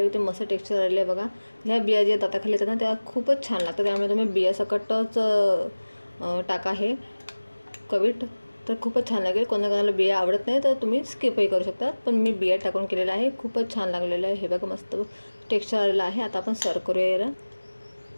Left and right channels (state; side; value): inverted; both; correlation -1.00